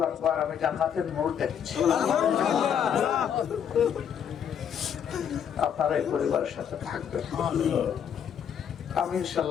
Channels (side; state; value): right; quieter; 8.3 dB